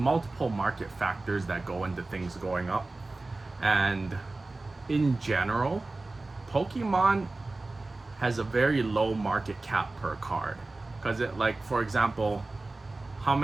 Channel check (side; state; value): left; quieter; 3.2 dB